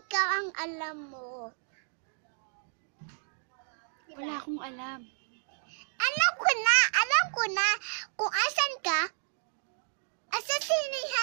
ang alam mo. Diba? Wala akong alam. Alam ko na kung asan ka.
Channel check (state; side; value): silent; left; 57 dB below the other